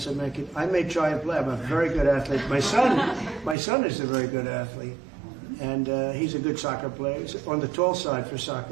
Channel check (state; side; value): drops out; left; at 3.6 s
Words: are making. I may try and play. I'm a very good athlete. My son is a very good athlete, and he's a good soccer player. He's on the tall side for